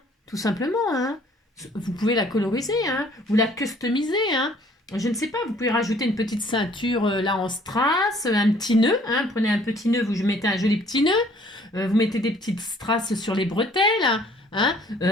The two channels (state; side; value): normal; both; correlation 0.58